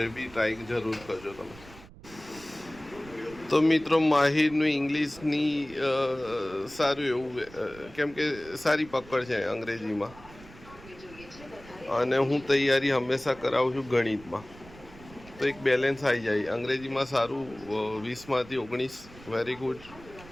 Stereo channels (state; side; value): noise; right; rumble, 20 dB below the sound